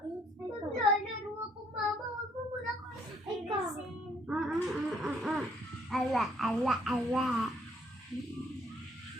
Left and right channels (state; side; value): normal; both; correlation 0.66